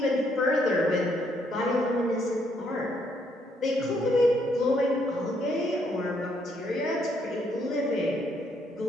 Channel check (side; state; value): both; normal; correlation 0.72